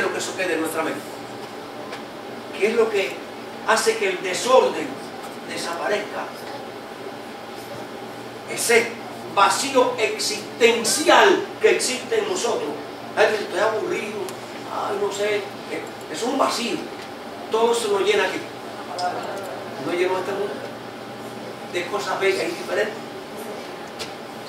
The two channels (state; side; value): identical; both; correlation 1.00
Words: que eso quede en nuestra mente. ¿Qué es lo que hace que el desorden desaparezca? Ese vacío existencial que existe en nosotros. Ay, estoy aburrido, ay, no sé, es un vacío. Todo se lo llena aquí. No llenó este mundo de cosas bellas y diferentes.